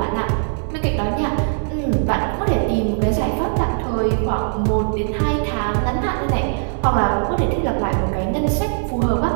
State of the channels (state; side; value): silent; left; 65 dB below the other